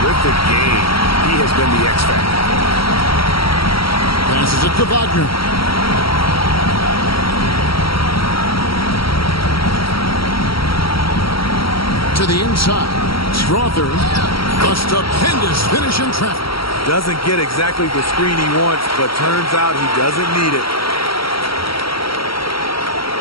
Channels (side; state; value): right; late; 0.75 ms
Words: game. He has been the X factor. Passes it to Wagner. To the inside. Strawther. A stupendous finish in traffic. Doesn't get exactly the screen he wants, but turns out he doesn't need it.